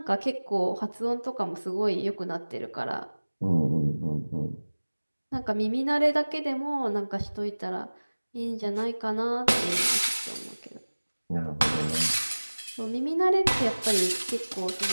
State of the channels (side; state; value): both; inverted; correlation -1.00